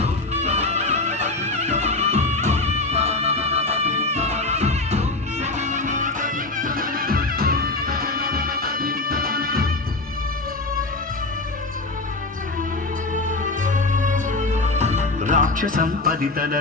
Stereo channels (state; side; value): quieter; right; 3.2 dB